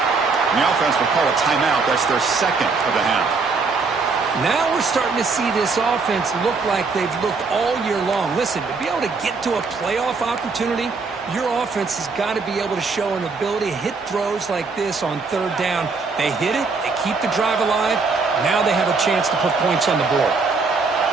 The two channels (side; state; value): left; quieter; 4.4 dB